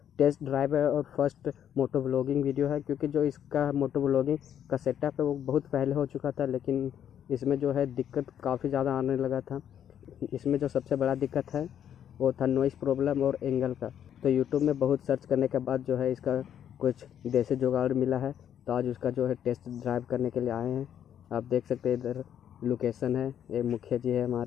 टेस्ट ड्राइव है और फर्स्ट मोटो व्लॉगिंग वीडियो है। क्योंकि जो इसका मोटो व्लॉगिंग का सेटअप है वो बहुत पहले हो चुका था, लेकिन इसमें जो है दिक्कत काफ़ी ज़्यादा आने लगा था। इसमें जो सबसे बड़ा दिक्कत है वो था नॉइज़ प्रॉब्लम और एंगल का। तो यूट्यूब में बहुत सर्च करने के बाद जो है इसका कुछ देसी जुगाड़ मिला है, तो आज उसका जो है टेस्ट ड्राइव करने के लिए आए हैं। आप देख सकते हैं इधर लोकेशन है, ये मुखिया जी है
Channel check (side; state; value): right; quieter; 9.6 dB